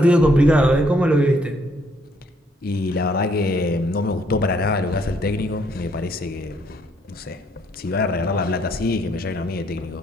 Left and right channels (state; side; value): normal; both; correlation 0.69